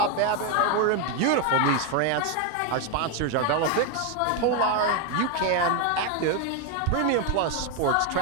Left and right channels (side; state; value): both; different; correlation 0.01